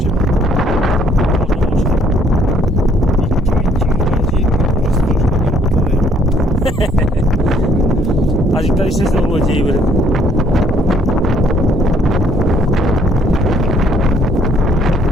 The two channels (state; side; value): normal; both; correlation 0.64